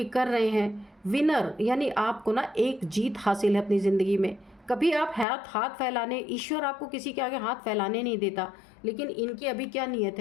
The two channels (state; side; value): drops out; right; at 5.2 s